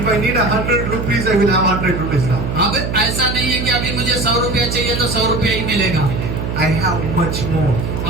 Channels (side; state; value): right; noise; hum, 3 dB below the sound